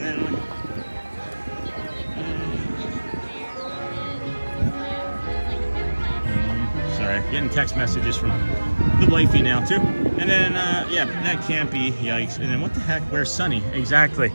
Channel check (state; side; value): inverted; both; correlation -1.00